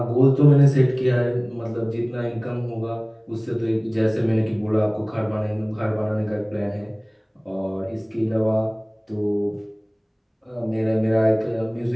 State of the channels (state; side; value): identical; both; correlation 1.00